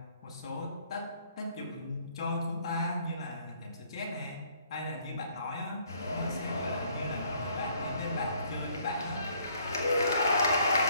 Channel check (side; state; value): both; inverted; correlation -0.64